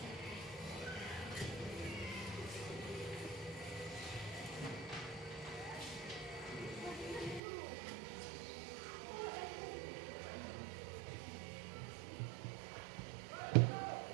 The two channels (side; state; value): left; drops out; at 7.4 s